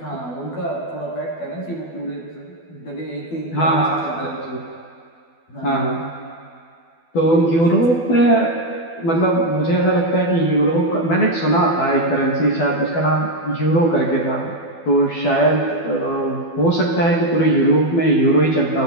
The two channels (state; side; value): late; right; 12 ms